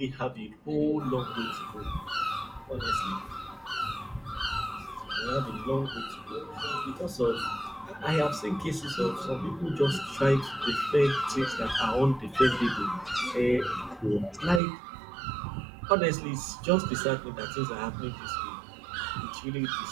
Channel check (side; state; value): left; drops out; at 14.6 s